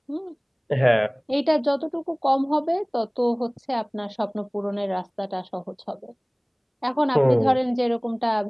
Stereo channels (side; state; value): both; identical; correlation 1.00